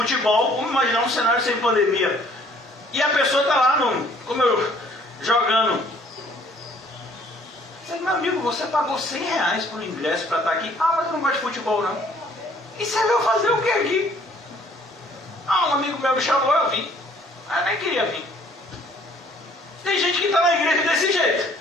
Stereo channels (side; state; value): both; normal; correlation 0.59